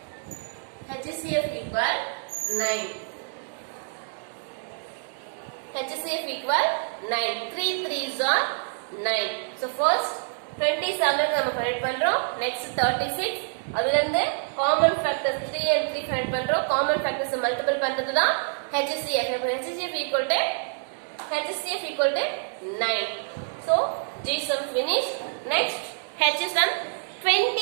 HCF equal 9. HCF equal 9. 3 3s are 9. So first 27 நம்ம ஃபைண்ட் பண்றோம். நெக்ஸ்ட் 36 அதுல இருந்து காமன் ஃபேக்டர்ஸ் 3 and 3 ஃபைண்ட் பண்றோம். காமன் ஃபேக்டர்ஸ் மல்டிபிள் பண்றது தான் HCF. HCF equal to 9. So G sum finished. Next H sum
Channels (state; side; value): silent; left; digital silence